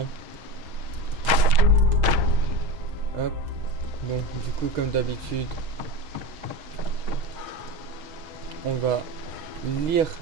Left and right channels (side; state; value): left; late; 6.3 ms